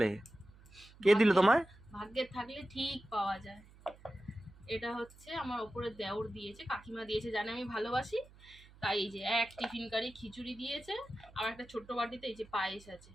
কে দিল ভাগ্যে তোমায়? ভাগ্যে থাকলে ঠিক পাওয়া যায়। এটা হচ্ছে আমার ওপরে দেওর দিয়েছে, কাকিমা দিয়েছে, জানে আমি ভালোবাসি, তাই এই যে এক টিফিন কারি খিচুড়ি দিয়েছে, আর একটা ছোট্ট বাটিতে এই যে পায়েস আছে।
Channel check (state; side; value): noise; right; hum, 23 dB below the sound